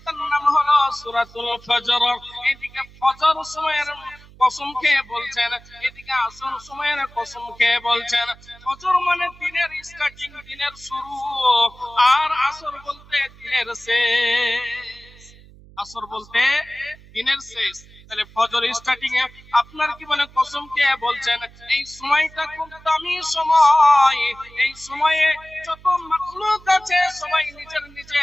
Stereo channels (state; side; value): noise; right; hum, 23 dB below the sound